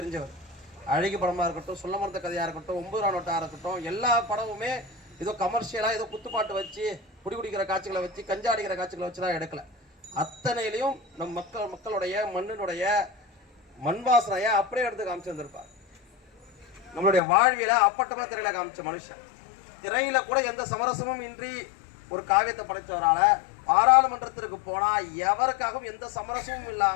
அழகி படமாக இருக்கட்டும், சொல்ல மறந்த கதையாக இருக்கட்டும், 9 நோட்டாக இருக்கட்டும், எல்லா படமுமே ஏதோ கமர்ஷியலாக ஏதோ குத்துப்பாட்டு வச்சு குடிக்கிற காட்சிகளை வச்சு கஞ்சா அடிக்கிற காட்சிகளை வச்சு தான் எடுக்கல. அத்தனையிலையும் நம் மக்களுடைய மண்ணினுடைய மண் வாசனையை அப்படியே எடுத்து காமிச்சு வந்திருப்பார். நம்மளுடைய வாழ்வியல அப்பட்டமா திரையில காமிச்ச மனுஷன். திரையில கூட எந்த சமரசமும் இன்றி ஒரு காவியத்தை படைத்தவரால பாராளுமன்றத்திற்கு போனா எவருக்காகவும் எந்த சமரசமும்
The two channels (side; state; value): right; drops out; at 17.2 s